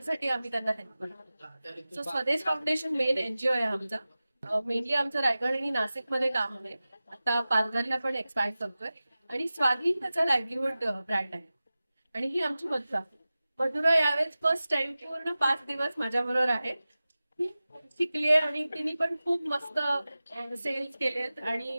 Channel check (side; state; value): both; inverted; correlation -0.96